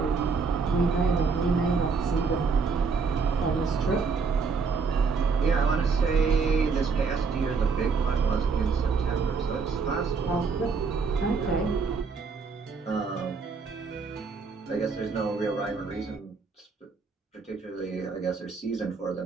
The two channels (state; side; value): quieter; left; 5.0 dB